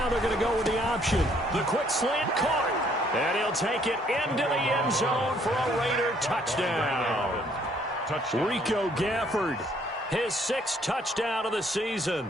they're going to go with the option. The quick slant caught. And he'll take it into the end zone for a Raider touchdown. Rico Gafford, his 6th touchdown of the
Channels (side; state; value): both; normal; correlation 0.65